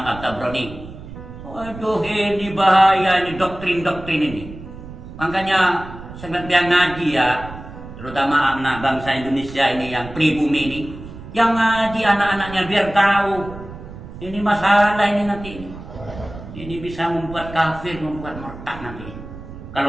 At-Tabrani. Waduh, ini bahaya, ini doktrin-doktrin ini. Makanya sebagian ngaji ya, terutama anak bangsa Indonesia ini yang pribumi ini, yang ngaji anak-anaknya biar tahu ini masalah ini nanti. Ini bisa membuat kafir, membuat murtad nanti.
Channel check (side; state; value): right; noise; rumble, 13 dB below the sound